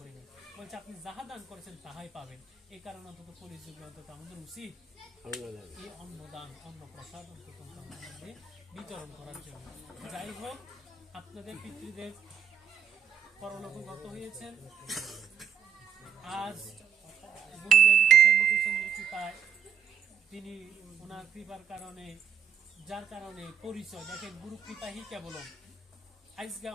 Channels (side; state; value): left; quieter; 7.5 dB